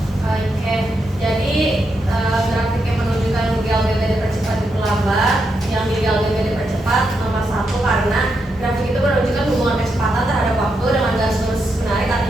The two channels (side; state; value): both; normal; correlation 0.83